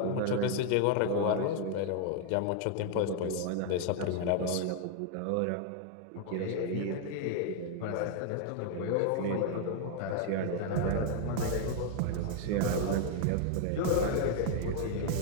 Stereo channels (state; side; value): different; both; correlation 0.00